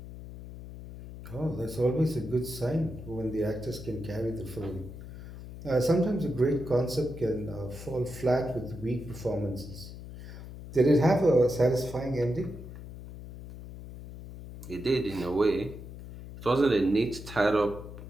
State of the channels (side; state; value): left; noise; hum, 13 dB below the sound